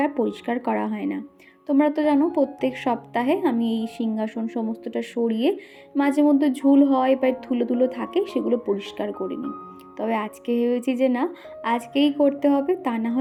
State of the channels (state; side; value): identical; both; correlation 1.00